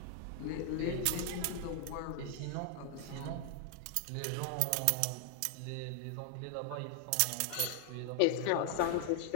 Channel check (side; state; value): both; different; correlation 0.00